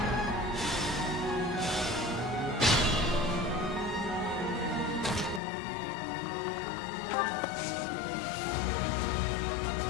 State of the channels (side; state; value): right; drops out; at 5.4 s